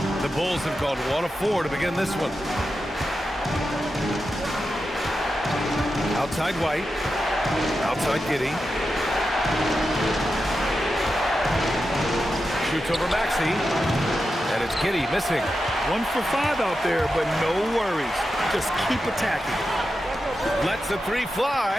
The Bulls have gone 1 of 4 to begin this one. Outside White. Outside Giddey. Shoots over Maxey. And it's Giddey missing. 1 for 5 out there, but no worries. Just keep attacking. Lets the 3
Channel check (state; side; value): normal; both; correlation 0.90